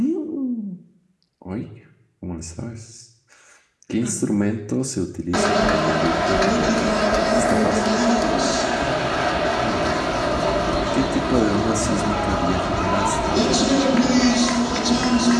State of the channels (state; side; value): identical; both; correlation 1.00